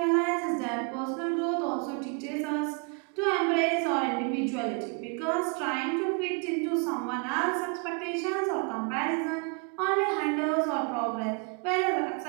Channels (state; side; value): quieter; left; 35.8 dB